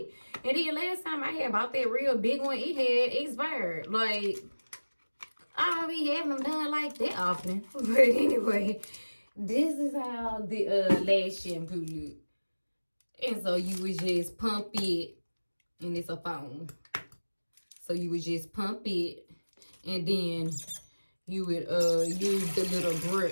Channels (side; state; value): both; inverted; correlation -1.00